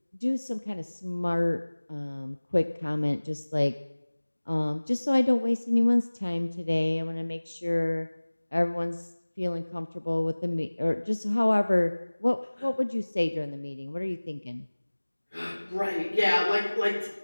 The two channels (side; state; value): both; inverted; correlation -1.00